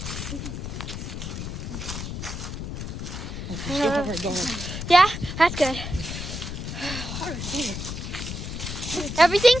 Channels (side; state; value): left; noise; rumble, 6 dB below the sound